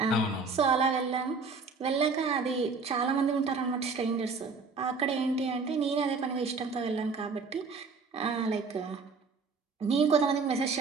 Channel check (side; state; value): left; quieter; 4.6 dB